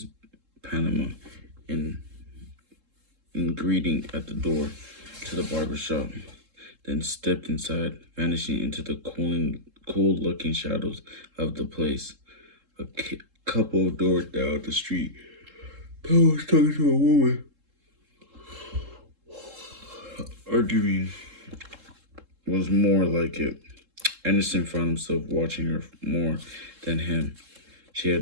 Panama in greeting at the door to the barber shop, then stepped inside, vanishing into the cool-looking shadows of the place. A couple of doors down the street, Pell was talking to a woman, arguing was more like it. Anderson found himself watching her more than him. She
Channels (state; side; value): late; left; 3.7 ms